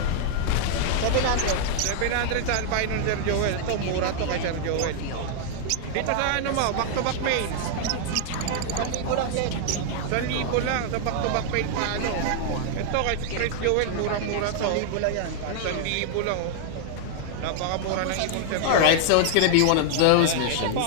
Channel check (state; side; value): different; both; correlation -0.01